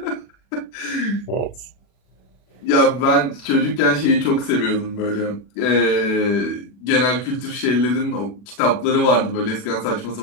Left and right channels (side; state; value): right; late; 40 ms